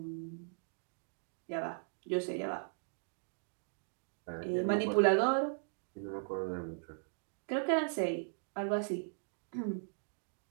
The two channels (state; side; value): silent; left; digital silence